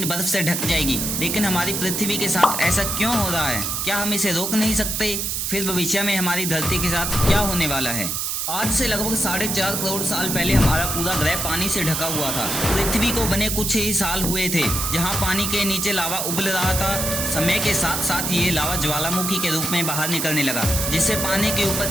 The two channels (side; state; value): right; noise; hiss, 1 dB below the sound